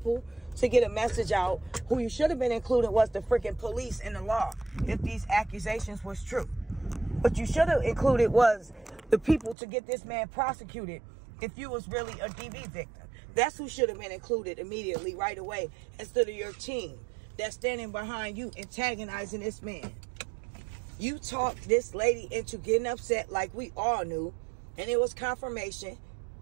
to get a message out? Who you should have been included was the freaking police and the law, if these accusations was true. What you should have included was the people to get this man prosecuted if you was really a DV victim. That's who should have been included immediately, right away, instead of your team that's standing behind you antagonizing this man. You talked this lady into getting upset like we all knew, and it was confirmation.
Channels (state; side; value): drops out; left; at 9.6 s